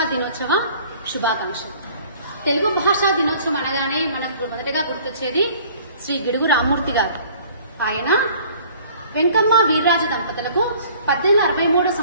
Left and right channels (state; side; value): inverted; both; correlation -0.53